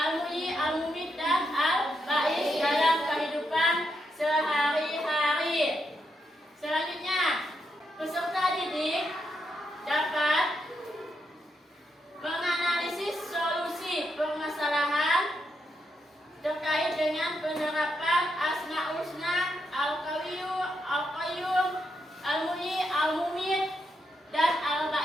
Al-Mumit, dan Al-Ba'is dalam kehidupan sehari-hari. Selanjutnya, peserta didik dapat menganalisis solusi permasalahan terkait dengan penerapan Asmaul Husna, Al-Qawiyyu, Al-Qayyum, Al-Muhyi, Al-Mumit, dan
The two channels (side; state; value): both; normal; correlation 0.82